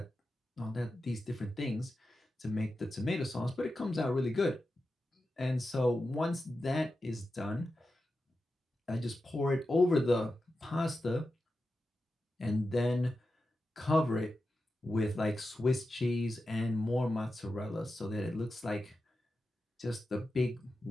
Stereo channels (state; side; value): normal; both; correlation 0.91